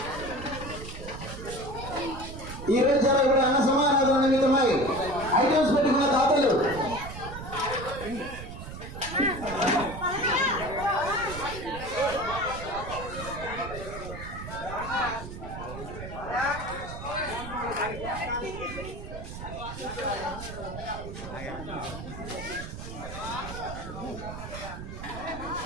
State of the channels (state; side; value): noise; right; rumble, 10 dB below the sound